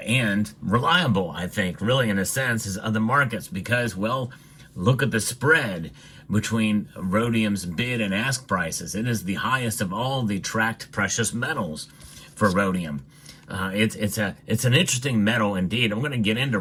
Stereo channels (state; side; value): identical; both; correlation 1.00